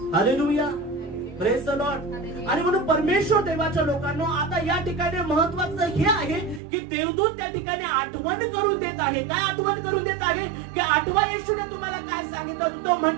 हालेलुया. Praise the Lord. आणि म्हणून परमेश्वर देवाच्या लोकांना आता या ठिकाणी महत्वाचं हे आहे की देवदूत त्या ठिकाणी आठवण करून देत आहे. काय आठवण करून देत आहे? की आठवा येशूने तुम्हाला काय सांगितलं. तो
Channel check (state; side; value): drops out; left; at 6.6 s